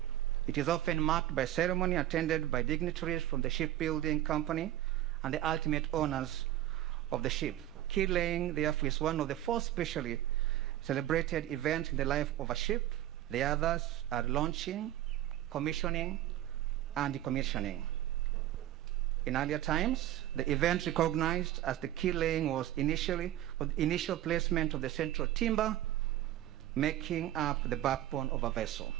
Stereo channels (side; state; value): left; quieter; 13.3 dB